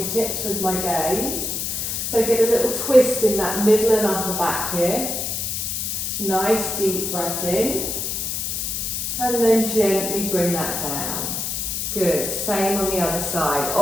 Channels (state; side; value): noise; left; hiss, 2 dB below the sound